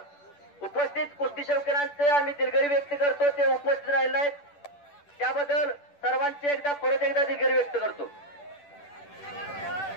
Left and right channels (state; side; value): late; right; 10 ms